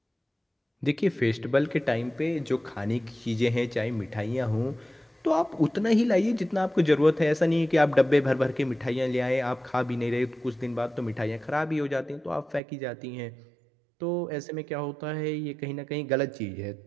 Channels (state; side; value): drops out; left; at 12.6 s